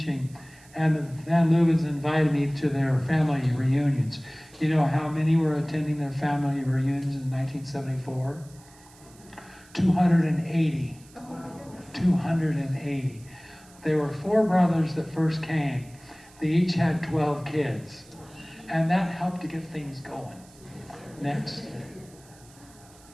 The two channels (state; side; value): noise; right; hiss, 25 dB below the sound